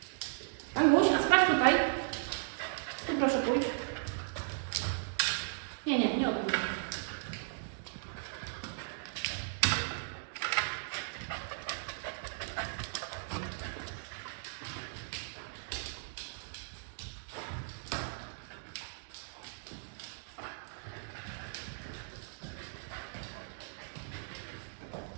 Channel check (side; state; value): left; silent; digital silence